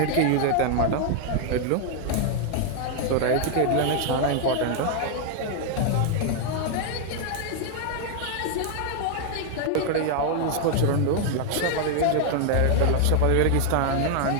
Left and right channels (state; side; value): different; both; correlation 0.00